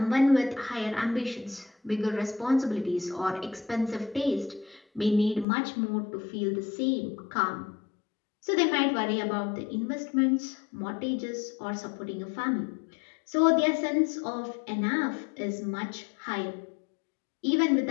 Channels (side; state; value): right; drops out; at 5.5 s